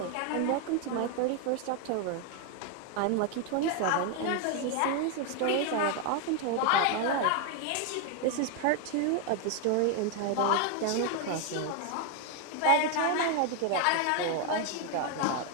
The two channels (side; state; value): both; different; correlation 0.01